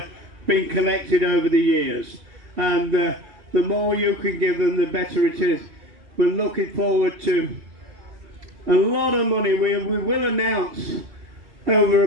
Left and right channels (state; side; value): late; left; 3.0 ms